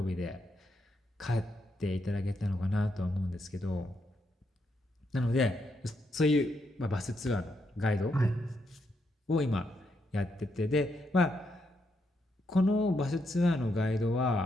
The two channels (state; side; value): normal; both; correlation 0.80